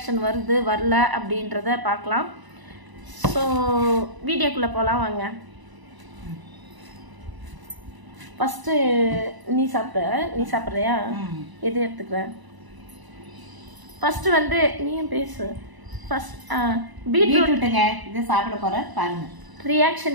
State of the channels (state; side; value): late; left; 1.0 ms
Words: வருது வரல அப்படின்றத பார்க்கலாம். ஸோ வீடியோக்குள்ளே போகலாம் வாங்க. ஃபஸ்ட்டு நீ சாப்பிட்றியா? எது எடுத்துக்கிற? ஃபஸ்ட்டு வந்து நீயும் பேசு. ஃபர்ஸ்ட் பீட்ரூட்டுங்க, இது சாப்பிட போகிறேன் பாருங்க.